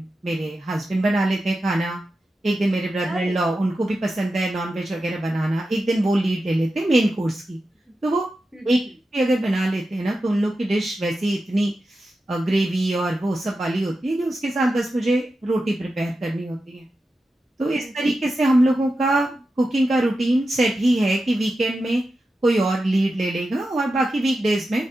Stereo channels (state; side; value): normal; both; correlation 0.91